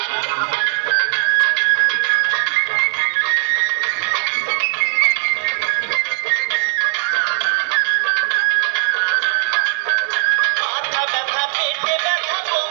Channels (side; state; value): left; silent; digital silence